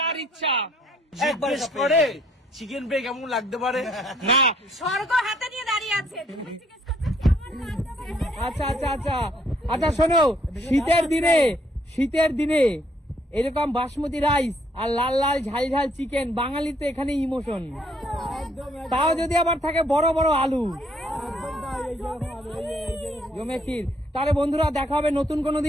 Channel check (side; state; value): both; normal; correlation 0.67